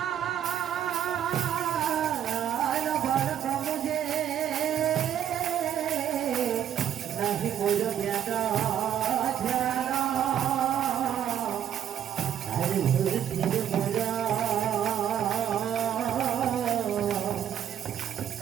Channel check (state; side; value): quieter; left; 9.7 dB